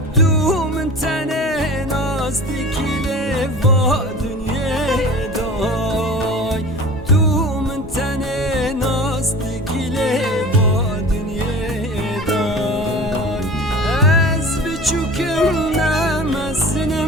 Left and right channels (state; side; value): normal; both; correlation 0.39